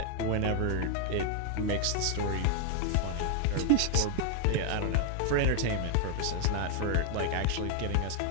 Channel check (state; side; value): different; both; correlation 0.00